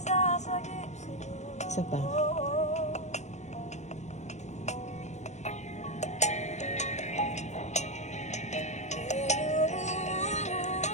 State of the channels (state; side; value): late; right; 0.33 ms